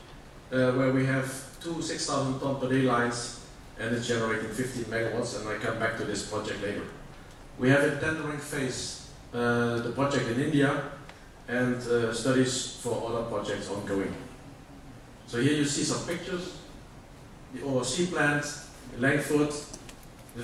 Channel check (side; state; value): both; identical; correlation 1.00